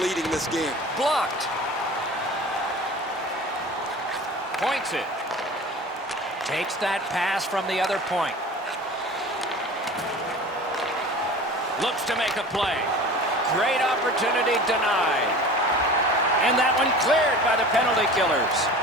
this game. Blocked. Points it. Takes that pass from the other point. Looks to make a play. Great opportunity denied. And that one cleared by the penalty killers.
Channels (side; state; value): both; normal; correlation 0.39